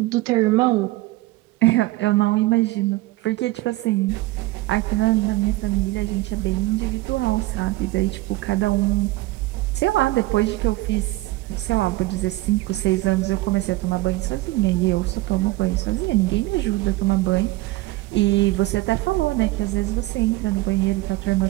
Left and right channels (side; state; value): left; quieter; 19.3 dB